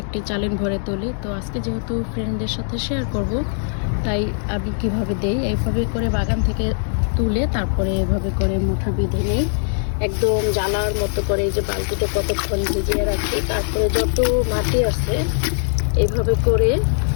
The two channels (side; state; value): right; silent; digital silence